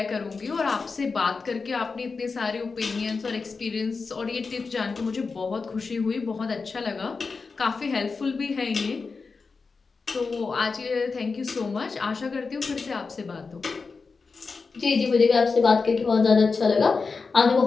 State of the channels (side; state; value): right; quieter; 4.6 dB